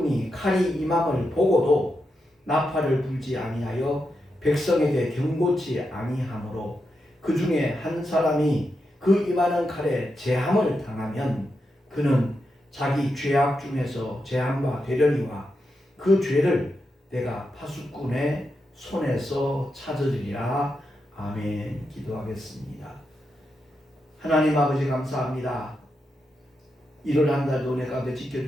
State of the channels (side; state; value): both; normal; correlation 0.86